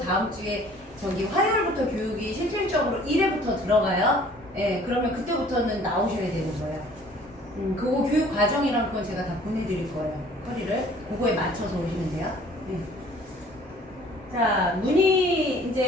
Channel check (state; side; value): normal; both; correlation 0.53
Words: 주에 저기 화요일부터 교육이 실질적으로 1회부터 들어가요. 네. 그러면 그때부터는 나오셔야 되는 거예요. 그거 교육 과정이랑 그건 제가 다 보내드릴 거예요. 허리를 그거에 맞춰서 오시면 돼요. 네. 자, 문의